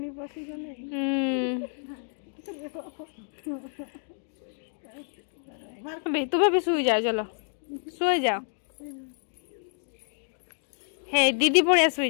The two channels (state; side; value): silent; right; digital silence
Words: बसी गने बे तुम्हें भी सुई जाओ चलो सोई जाओ हे दीदी पड़िया सुई